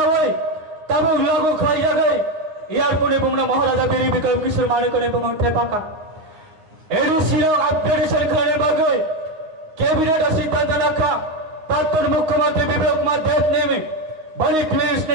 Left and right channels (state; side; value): late; left; 9.6 ms